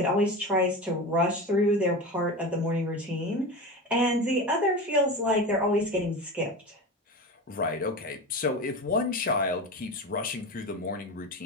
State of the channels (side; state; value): both; normal; correlation 0.26